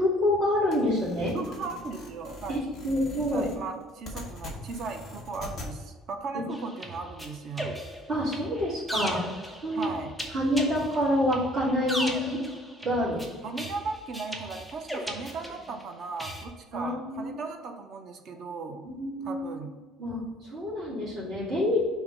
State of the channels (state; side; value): normal; both; correlation 0.57